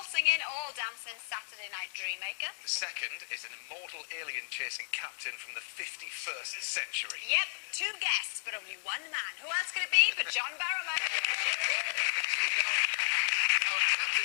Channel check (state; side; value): silent; right; digital silence